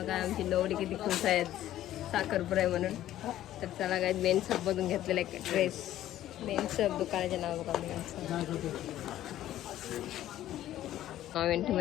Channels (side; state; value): right; quieter; 13.1 dB